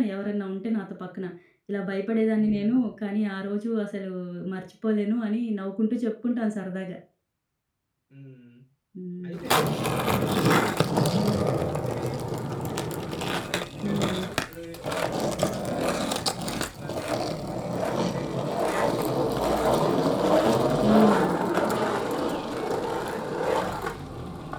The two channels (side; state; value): both; identical; correlation 1.00